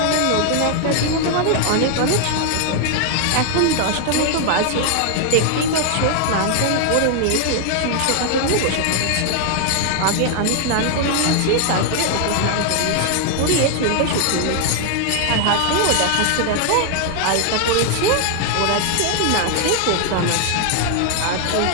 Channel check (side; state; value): both; different; correlation 0.00